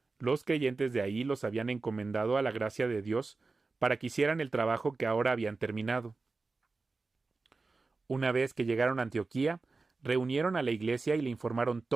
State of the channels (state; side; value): quieter; left; 3.9 dB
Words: Los creyentes de ahí los habían encomendado a la gracia de Dios para que hicieran el trabajo que ahora habían terminado. Una vez que llegaron a Antioquía, reunieron a la iglesia y le informaron